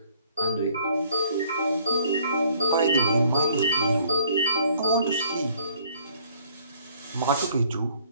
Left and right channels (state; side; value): inverted; both; correlation -0.60